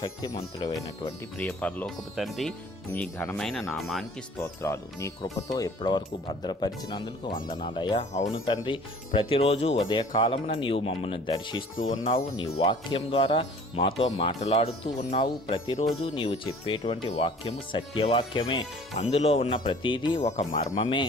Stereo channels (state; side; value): normal; both; correlation 0.49